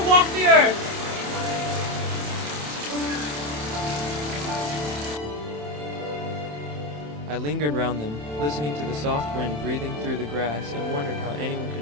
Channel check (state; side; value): late; left; 27 ms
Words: walk the earth. I lingered round them, listening to the soft wind breathing through the grass, and wondered how anyone could